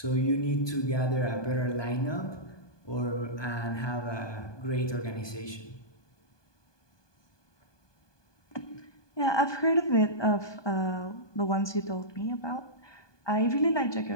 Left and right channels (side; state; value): right; late; 1.2 ms